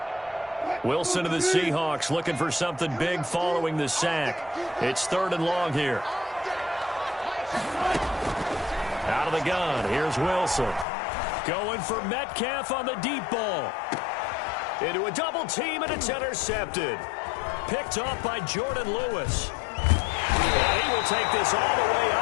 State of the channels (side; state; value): right; drops out; at 10.9 s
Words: Wilson of the Seahawks looking for something big following the sack. It's 3rd and long here. Out of the gun, here's Wilson. Going for Metcalf on the deep ball. Into a double team, and it's intercepted. Picked off by Jordan Lewis. And he will take this all the way